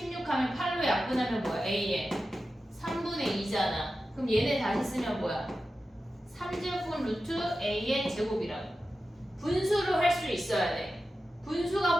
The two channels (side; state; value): both; normal; correlation 0.93